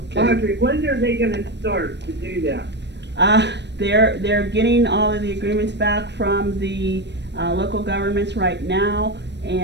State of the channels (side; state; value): left; late; 0.50 ms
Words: Audrey, when are they gonna start to do that? They're getting all of the agreements back from the local governments right now,